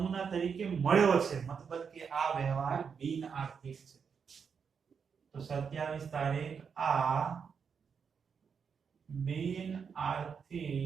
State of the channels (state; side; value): quieter; left; 6.4 dB